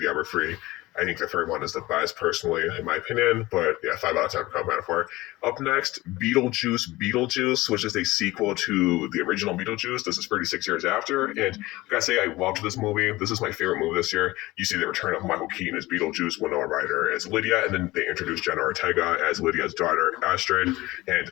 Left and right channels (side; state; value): right; quieter; 19.4 dB